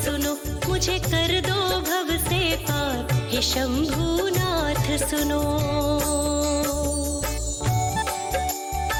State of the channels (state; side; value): identical; both; correlation 1.00